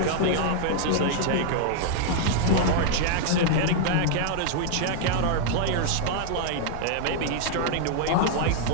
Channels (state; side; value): different; both; correlation -0.01